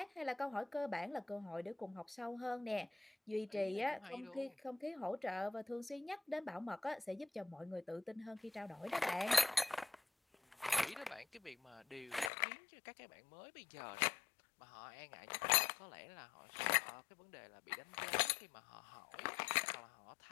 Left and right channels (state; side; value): drops out; right; at 12.3 s